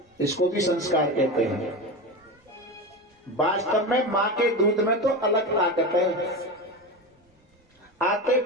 इसको भी संस्कार कहते हैं। वास्तव में मां के दूध में तो अलग ताकत है। आते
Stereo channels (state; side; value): normal; both; correlation 0.23